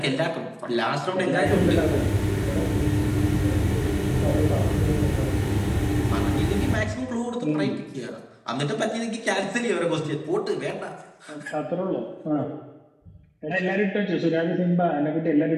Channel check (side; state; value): both; identical; correlation 1.00